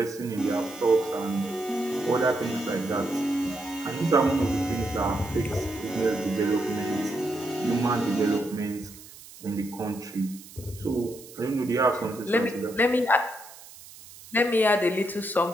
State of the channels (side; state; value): right; noise; hiss, 18 dB below the sound